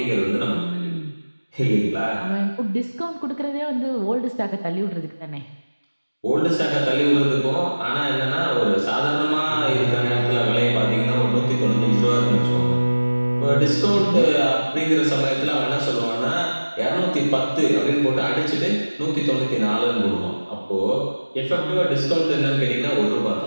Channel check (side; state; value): both; inverted; correlation -1.00